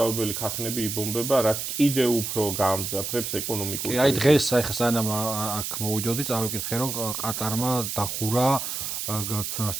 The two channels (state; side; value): noise; right; hiss, 4 dB below the sound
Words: ქარხნები იბომბება, რაც კიდევ უფრო გაამძაფრებს ეკონომიკურ. აი დღეს ახლა სანამ აქ მოვიდოდი, წავიკითხე, რომ ყატარმა დახურა